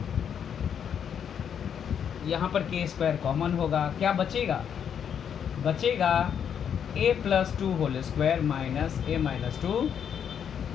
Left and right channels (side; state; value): right; quieter; 8.2 dB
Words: यहाँ पर k स्क्वायर कॉमन होगा, क्या बचेगा, बचेगा a plus 2 whole square minus a minus 2